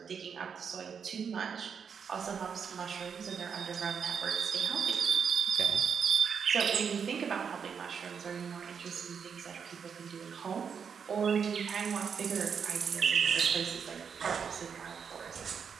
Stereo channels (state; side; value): quieter; left; 6.7 dB